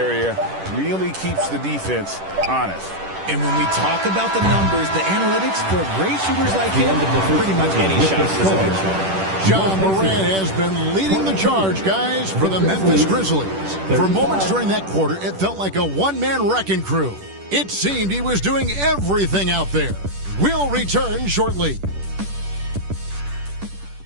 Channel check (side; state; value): left; late; 10 ms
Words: Really keeps the defense honest. And when we talk about the numbers, the analytics for great shooters like him, pretty much any shot is a good shot. Ja Morant has been leading the charge, guys, for the Memphis Grizzlies. For moments during that quarter, it felt like a one-man wrecking crew. It seemed he was doing everything out there. We'll return shortly.